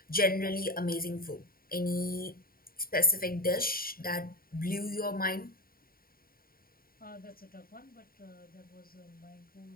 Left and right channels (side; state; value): right; late; 0.43 ms